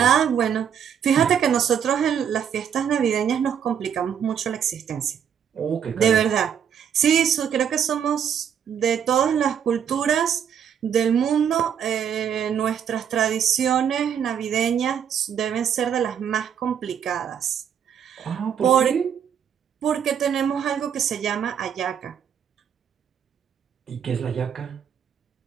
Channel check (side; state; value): left; quieter; 8.3 dB